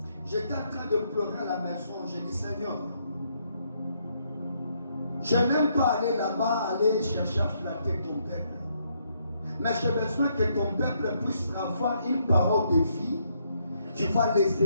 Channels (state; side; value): inverted; both; correlation -0.74